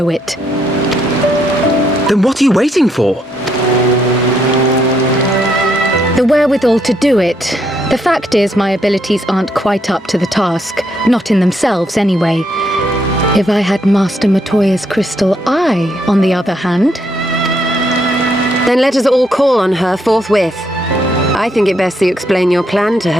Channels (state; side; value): normal; both; correlation 0.74